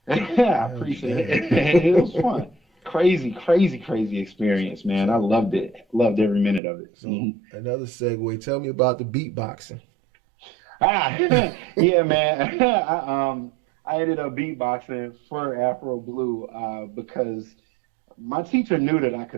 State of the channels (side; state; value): left; drops out; at 6.6 s